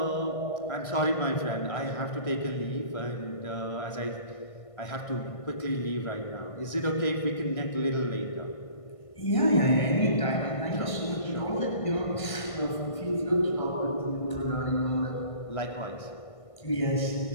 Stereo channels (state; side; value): late; right; 1.6 ms